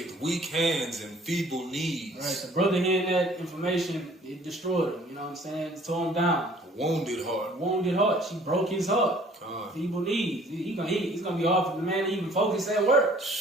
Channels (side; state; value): both; normal; correlation 0.54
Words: weak hands and feeble knees. Right, the brother hearing that information, it destroyed him. You know what I'm saying? It tore him down. A wounded heart. Wounded heart. She broke his heart. God. Feeble knees. It's gonna be hard for the man to even focus at work.